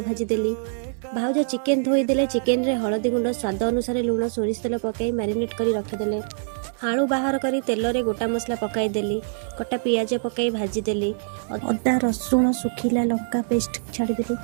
भाजी देली। भाउज चिकेन धोई देले। चिकेन रे हळदी गुंड स्वाद अनुसार लुण सोरिष तेल पकाई मैरिनेट करी रखिदेले। आलू बाहर करी तेल रे गोटा मसला पकाई देली। कटा पियाज पकाई भाजी देली। अदा रसुण सुखिला लंका पेस्ट छाड़ी देली।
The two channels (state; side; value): silent; left; digital silence